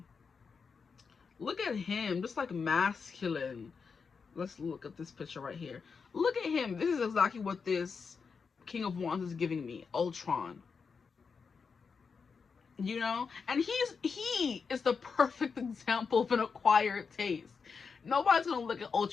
Look at him, just like masculine. Let's look at this picture right here. Look at him. This is exactly what this King of Wands is giving me. Ultron. You know? And he is the perfect example of an acquired taste. Nobody's gonna look at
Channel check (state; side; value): quieter; right; 5.4 dB